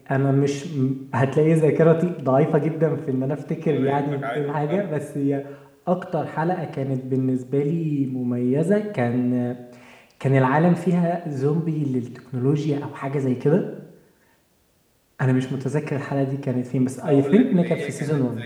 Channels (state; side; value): identical; both; correlation 1.00